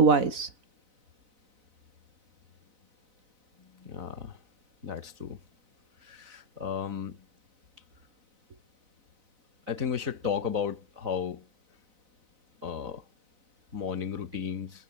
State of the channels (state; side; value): late; left; 4.0 ms